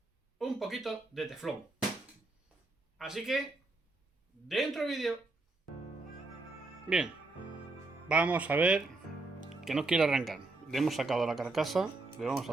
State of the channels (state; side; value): quieter; left; 3.2 dB